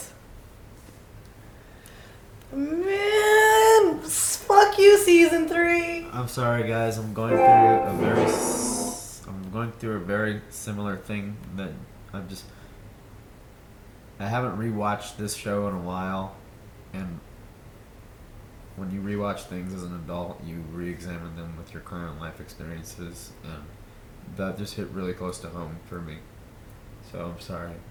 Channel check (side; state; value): both; identical; correlation 1.00